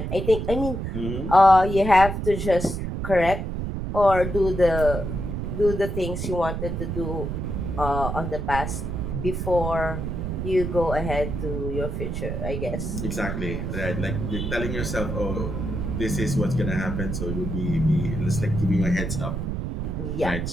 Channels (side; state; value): right; noise; rumble, 3 dB below the sound